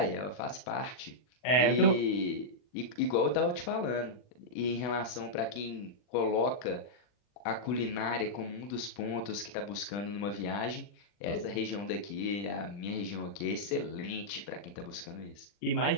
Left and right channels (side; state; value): right; late; 40 ms